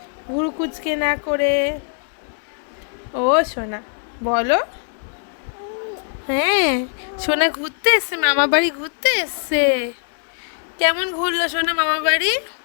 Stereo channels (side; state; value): right; silent; digital silence